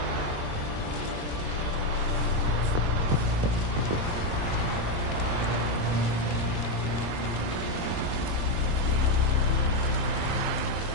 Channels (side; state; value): left; late; 22 ms